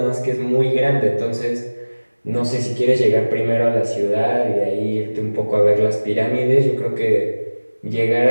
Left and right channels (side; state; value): both; inverted; correlation -1.00